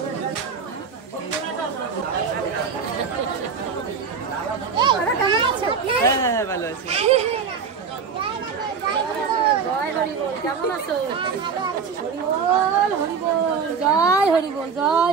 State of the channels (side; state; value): left; quieter; 5.9 dB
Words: বলি। কেমন আছো? হ্যাঁ ভালো আছি। জয় হরি বল, কেমন আছো? হরি বল, হরি বল, জয় হরি বল,